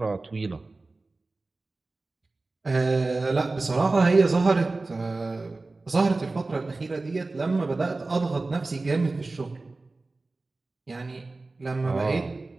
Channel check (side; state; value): left; quieter; 3.4 dB